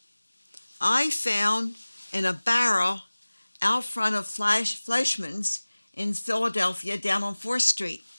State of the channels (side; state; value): both; inverted; correlation -1.00